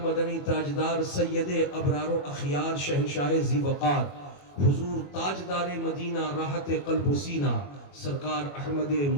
مدنی تاجدار سید ابرار و اخیار شہنشاہ ذی وقار حضور تاجدار مدینہ راحت قلب و سینہ سرکار احمد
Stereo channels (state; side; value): late; right; 21 ms